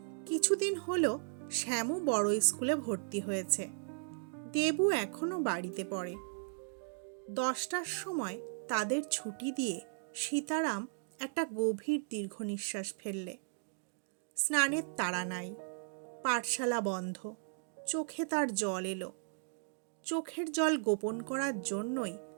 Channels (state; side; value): silent; left; digital silence